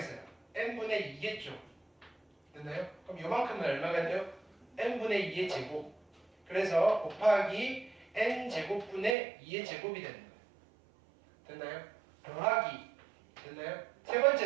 n분의 2겠죠. 됐나요? 그럼 요만큼은 얼마가 돼요? n분의 2의 제곱. 그래서 곱하기 n제곱분의 2의 제곱이 되는 거예요. 됐나요? 더하기. 됐나요? 세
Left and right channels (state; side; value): drops out; left; at 9.2 s